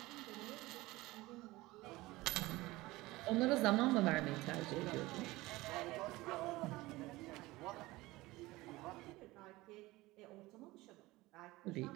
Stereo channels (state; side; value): quieter; left; 19.8 dB